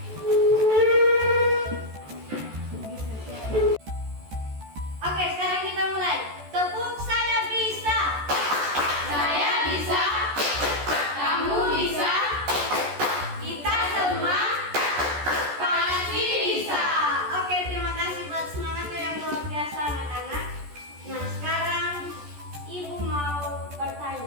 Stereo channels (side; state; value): left; late; 14 ms